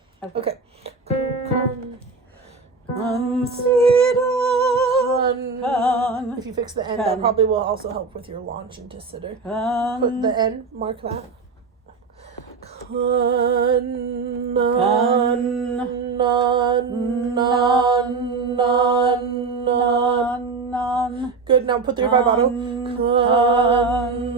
Consider. If you fix the N, that probably will also help with your launch into sitter. Put the N, mark that. Good. Now put the vibrato. Consider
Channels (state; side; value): quieter; left; 4.5 dB